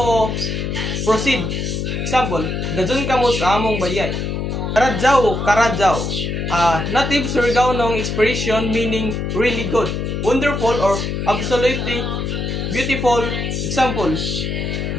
proceed. Example, dazun kamo sa among bayay. Karadjaw. Native Surigao expression meaning really good, wonderful, or absolutely beautiful. Example,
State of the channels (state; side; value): noise; left; hum, 2 dB below the sound